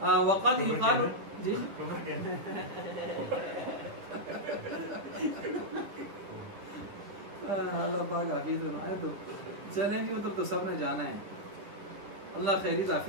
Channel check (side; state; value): left; late; 11 ms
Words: وقد یقال جی اللہ پاک حافظ ہے. تو چلیں جی ادھر تو سب نے جانا ہے. اللہ خیری